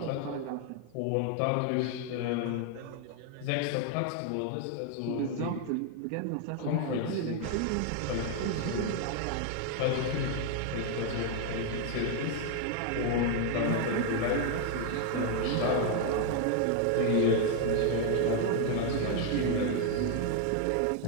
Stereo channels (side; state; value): both; different; correlation 0.00